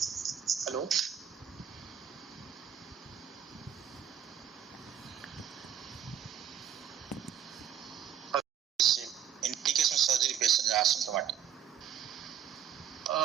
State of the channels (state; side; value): quieter; left; 9.1 dB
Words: Hello? Indication surgery patients are asymptomatic.